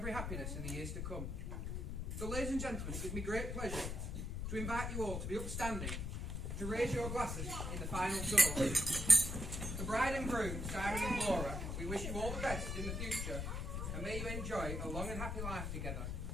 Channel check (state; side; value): noise; left; rumble, 3 dB below the sound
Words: happiness in the years to come. So ladies and gentlemen, it gives me great pleasure to invite you all to be upstanding, to raise your glasses in the final toast. The bride and groom, Simon and Laura, we wish you all the best in the future, and may you enjoy a long and happy life together.